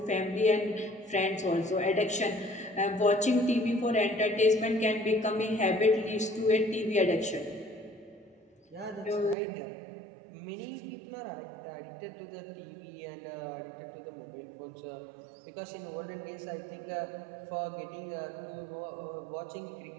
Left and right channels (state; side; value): drops out; left; at 9.3 s